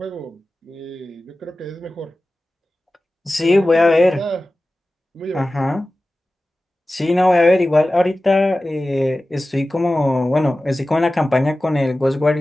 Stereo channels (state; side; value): normal; both; correlation 0.96